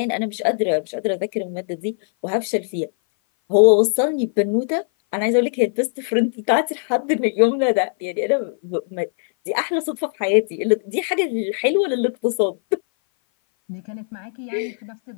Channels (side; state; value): right; silent; 58 dB below the other